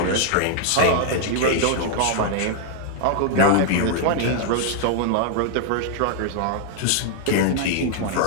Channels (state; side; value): different; both; correlation 0.00